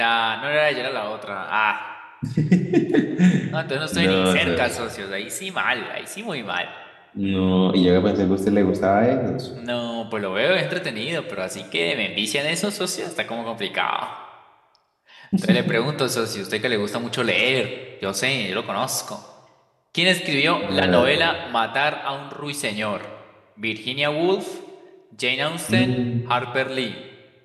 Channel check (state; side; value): identical; both; correlation 1.00